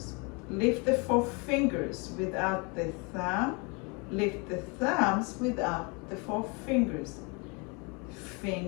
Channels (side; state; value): right; quieter; 31.2 dB